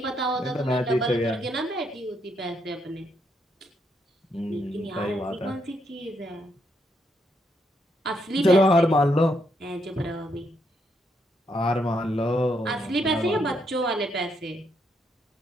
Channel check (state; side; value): normal; both; correlation 0.76